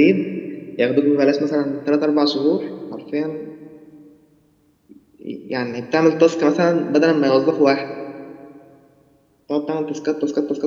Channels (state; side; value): identical; both; correlation 1.00